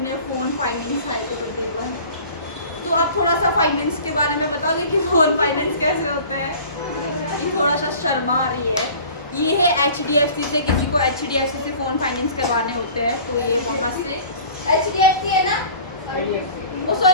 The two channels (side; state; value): both; inverted; correlation -0.45